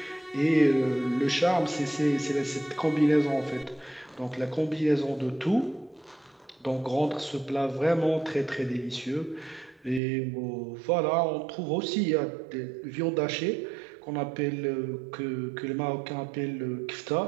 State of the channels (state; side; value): drops out; left; at 10.0 s